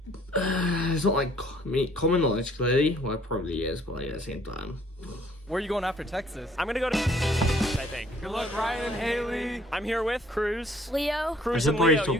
it's not like common knowledge, clearly. Well, it probably is, but like, at the same time. Where are you going after Texas? I'm gonna go to I think. Good luck, Ryan and Haley. I'm here with Cruz. Leo. Cruz I and should probably Leo. stop You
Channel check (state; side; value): normal; both; correlation 0.60